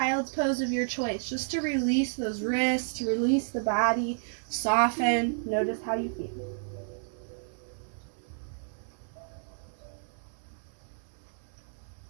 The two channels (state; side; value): silent; left; 57 dB below the other